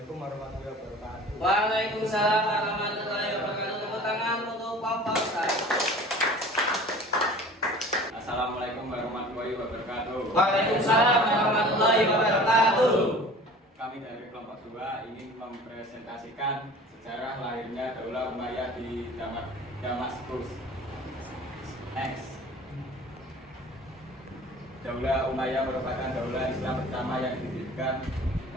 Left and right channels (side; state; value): both; normal; correlation 0.43